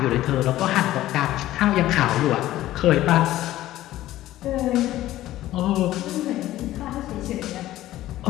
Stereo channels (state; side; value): quieter; right; 14.8 dB